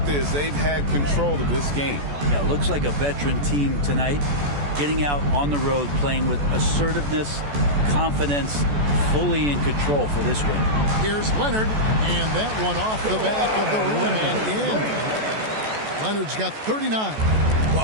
is they've had control of this game. Yeah, looks like a veteran team tonight. Getting out on the road, playing with assertiveness, confidence, fully in control for this one. Here's Leonard, and that one off the back of the rim and in. Leonard's got 39.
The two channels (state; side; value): late; left; 14 ms